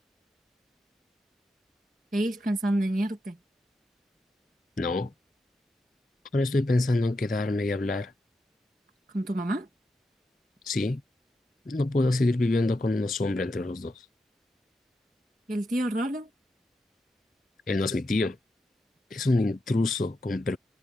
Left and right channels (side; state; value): both; normal; correlation 0.86